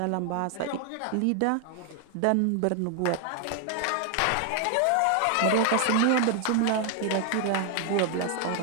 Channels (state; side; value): different; both; correlation 0.00